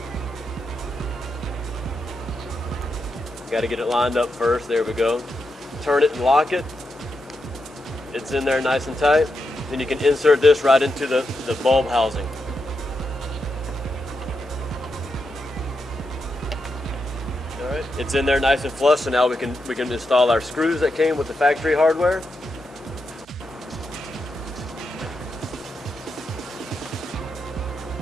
Got to get it lined up first. There we go. Turn it and lock it. It's in there nice and tight. Then you can insert this right into the bulb housing. All right, it's in there nice and flush. So now we can install our screws that came with the factory hardware.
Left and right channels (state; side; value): normal; both; correlation 0.85